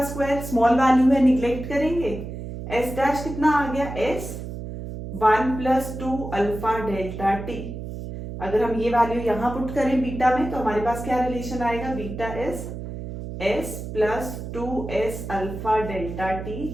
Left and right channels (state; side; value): noise; right; hum, 8 dB below the sound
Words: स्क्वायर, स्मॉल वैल्यू है निग्लेक्ट करेंगे, S डैश कितना आ गया, S 1 + 2 अल्फा डेल्टा टी। अगर हम ये वैल्यू यहाँ पुट करें बीटा में, तो हमारे पास क्या रिलेशन आएगा, beta S + 2S alpha delta